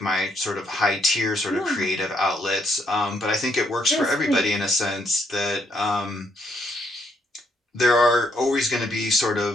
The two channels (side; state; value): both; normal; correlation 0.73